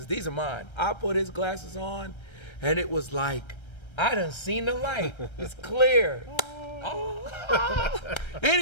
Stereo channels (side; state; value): right; late; 1.3 ms